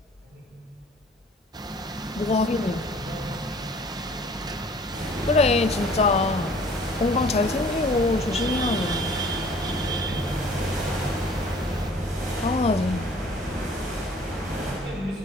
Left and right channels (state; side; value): normal; both; correlation 0.52